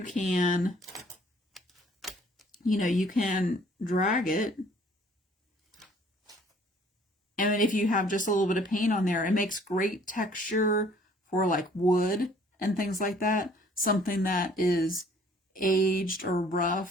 can drag it. And if you have just a little bit of paint on there, it makes great texture for like wood and things like that. Something that is aged or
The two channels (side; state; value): both; normal; correlation 0.57